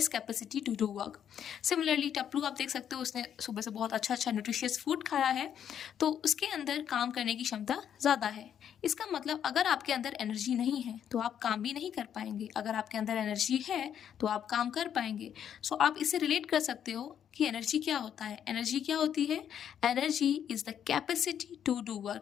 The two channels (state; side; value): quieter; right; 9.1 dB